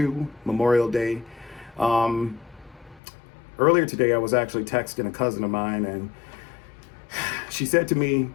Memorial Day. Earlier today, I was actually texting a cousin of mine, and she said to me,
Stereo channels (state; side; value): drops out; right; at 3.0 s